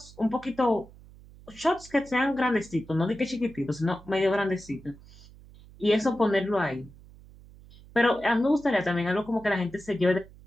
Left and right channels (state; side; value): noise; right; hum, 22 dB below the sound